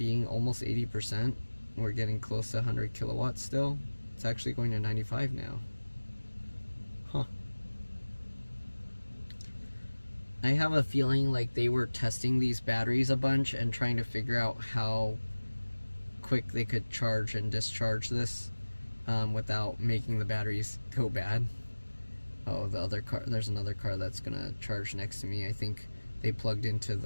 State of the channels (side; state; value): both; inverted; correlation -1.00